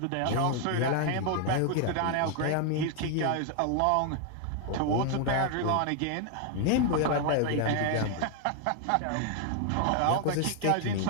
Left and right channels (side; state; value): both; different; correlation 0.00